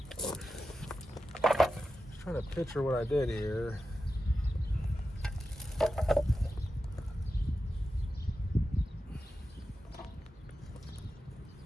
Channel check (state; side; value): normal; both; correlation 0.92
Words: Just trying to picture what I did here.